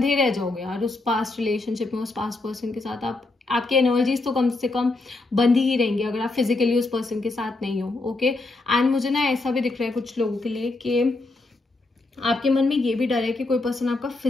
रह जाओगे यार उस पास्ट रिलेशनशिप में, उस पास्ट पर्सन के साथ। आपकी एनर्जीज तो कम से कम बंधी ही रहेंगी अगर आप फिजिकली उस पर्सन के साथ नहीं हो। ओके, एंड मुझे ना ऐसा भी दिख रहा है कुछ लोगों के लिए कि आपके मन में ये भी डर है कि कोई पर्सन आपका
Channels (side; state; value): right; quieter; 3.2 dB